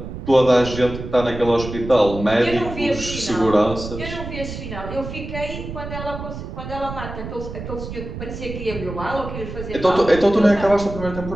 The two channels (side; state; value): right; noise; rumble, 9 dB below the sound